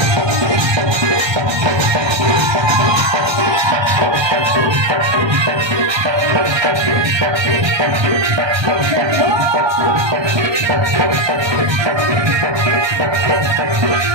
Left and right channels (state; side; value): late; left; 1.2 ms